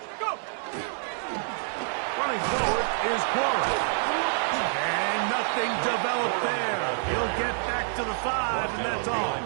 Go. Running forward is Corum. And nothing developed there. He'll get back to the 5, and that's all. Behind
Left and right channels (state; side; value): silent; left; 60 dB below the other